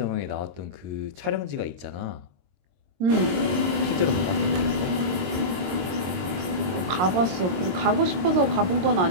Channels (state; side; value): late; left; 22 ms